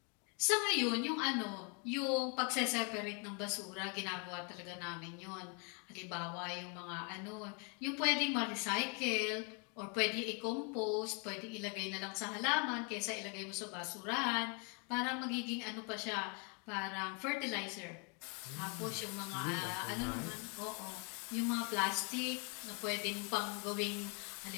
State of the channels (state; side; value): quieter; right; 36.0 dB